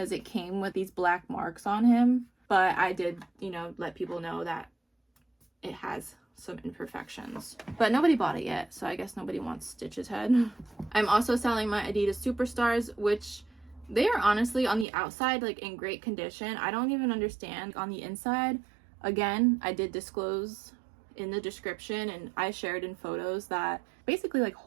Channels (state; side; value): drops out; left; at 14.9 s